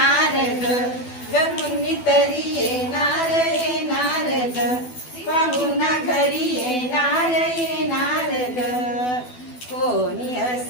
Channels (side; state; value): right; late; 12 ms